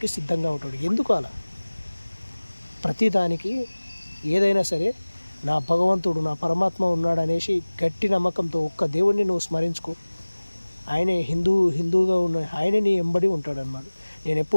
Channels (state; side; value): inverted; both; correlation -1.00